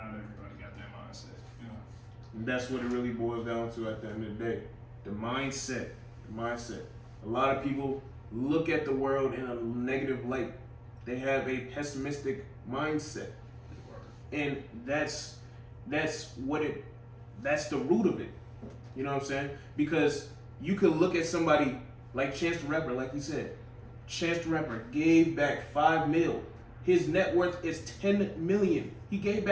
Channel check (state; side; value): identical; both; correlation 1.00